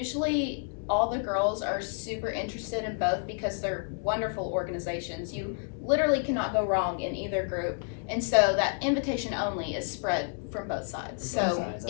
all the girls are super interested in both because they're wonderful organizations. You literally cannot go wrong in either group. And so that invitation only is spread from both sides. From both So sides,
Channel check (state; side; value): silent; right; 58 dB below the other